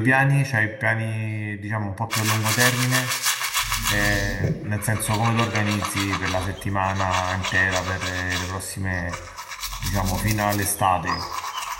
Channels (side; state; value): both; identical; correlation 1.00